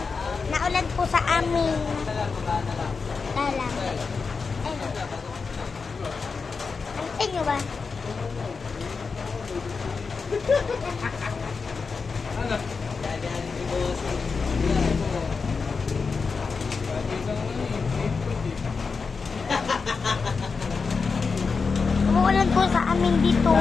Naulan po sa amin. Lalang. Antay nyo ba? Ano? Umuulan po sa amin dito.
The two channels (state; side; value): quieter; right; 4.9 dB